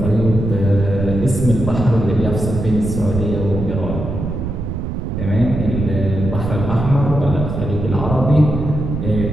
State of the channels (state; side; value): noise; right; rumble, 4 dB below the sound